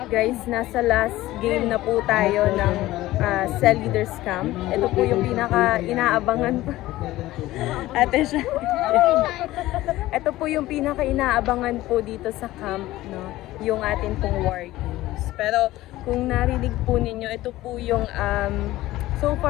Guys, nasa last game na po tayo ng Cell Leaders Camp. Ito po yung pinaka inaabangan pa. Ate siya. Ito po yung pinaka inaabangan po dito sa camp, no? Yung atin pong war games. Pero kung narinig po ninyo, ito po yung so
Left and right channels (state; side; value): quieter; right; 16.6 dB